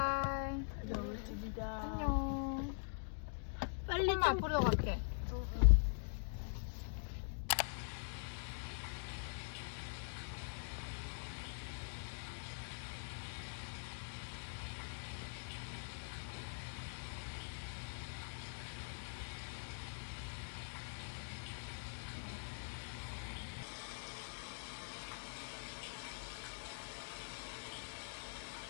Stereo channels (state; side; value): silent; right; digital silence